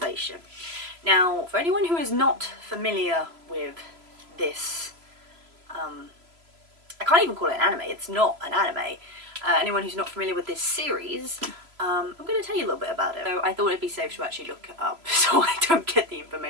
Now for anyone who is not familiar with this, I can't even call it an anime, it's not an anime. Anyone who's not familiar with this series, I'm going to tell you a little bit about it. So I thought it'd be safe to actually look it up so I don't get the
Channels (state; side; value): late; left; 3.0 ms